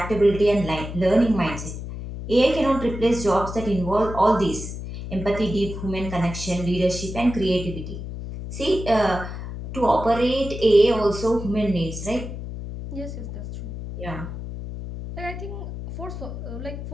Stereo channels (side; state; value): left; noise; hum, 8 dB below the sound